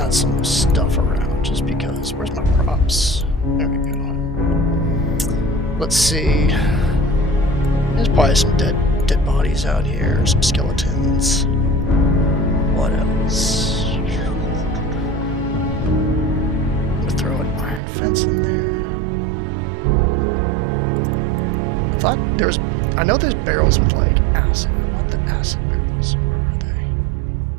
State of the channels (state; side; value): drops out; left; at 17.8 s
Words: some stuff around just because. Where's my props? There we go. Let's see. There's probably some dead bodies out here, some skeletons. What else? I'm gonna throw an iron fence in there. I know there's barrels with like acid. I want the acid barrels. Where are they?